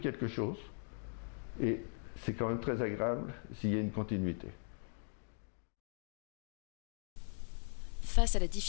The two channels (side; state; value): right; silent; 51 dB below the other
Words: chose et c'est quand même très agréable s'il y a une continuité. Face à la